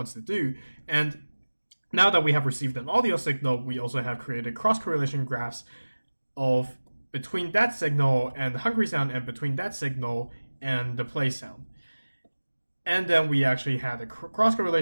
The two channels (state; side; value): inverted; both; correlation -1.00